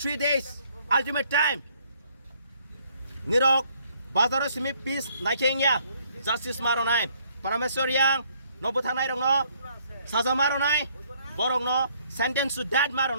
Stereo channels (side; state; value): both; inverted; correlation -0.65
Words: days ultimate time. Nirok bazar simi peace naikengya justice maronai parameswar yang no buthanai rong no saza maronai borong no sentence to death